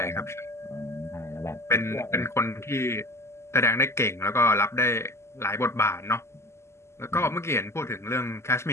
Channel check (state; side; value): late; right; 0.13 ms